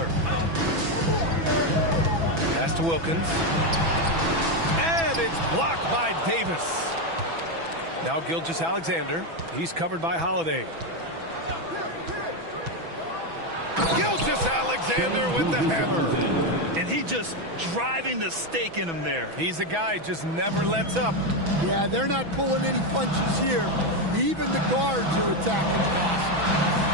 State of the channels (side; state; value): left; late; 6.0 ms